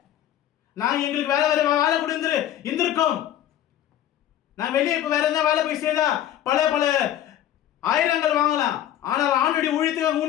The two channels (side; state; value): right; quieter; 11.7 dB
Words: நான் எங்களுக்கு வேலை கொடுத்து இருந்திருக்கோம். நான் வெளியே இப்ப வேற எதாவது வேலை போய் செய்தா பல ஆயிரங்கள் வாங்கலாம். ஆனால் ஆண்டுடைய ஊழியத்துக்கு